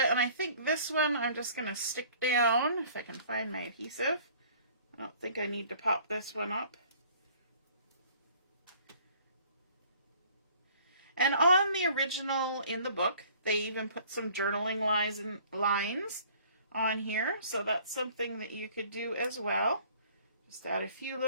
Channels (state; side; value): inverted; both; correlation -0.53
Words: And I think this one I'm just going to stick down, if I can find my adhesive. I don't think I need to pop this one up. And on the original in the book, they even put some journaling lines on here. So that's something that you could do as well. Just add a few